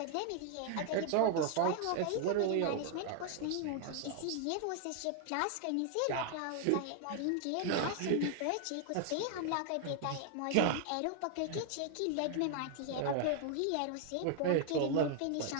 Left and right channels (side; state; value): both; different; correlation 0.00